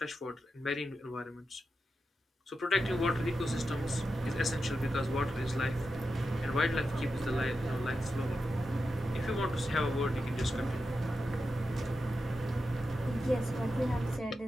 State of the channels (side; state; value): both; normal; correlation 0.89